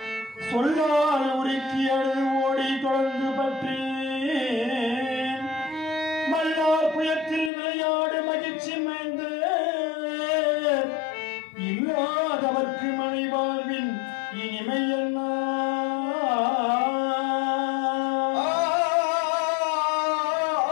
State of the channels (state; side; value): drops out; right; at 7.5 s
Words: சொல்லால் உருக்கி அழுது ஓடி தொடர்ந்து பற்றி மல்லார் புயத்தில் விளையாடு மகிழ்ச்சி மைந்த இல்ல இல்லாதவர்க்கு மனை வாழ்வின் இனிமை என்ன